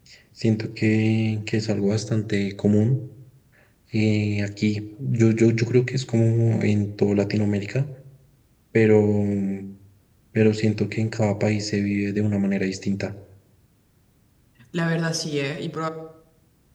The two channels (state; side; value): identical; both; correlation 1.00